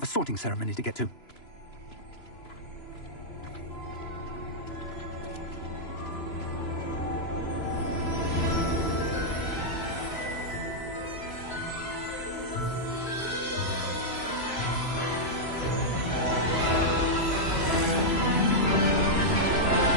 a sorting ceremony to get to.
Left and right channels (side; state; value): right; late; 3.0 ms